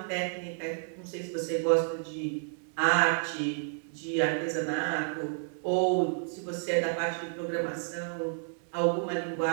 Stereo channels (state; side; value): silent; left; digital silence